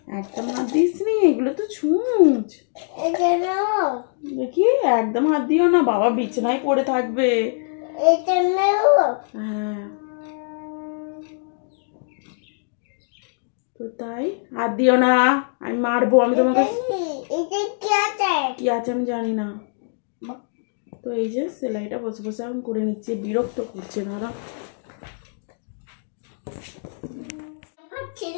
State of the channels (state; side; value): silent; right; digital silence